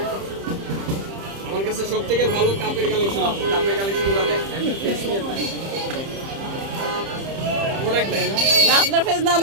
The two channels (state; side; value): late; left; 30 ms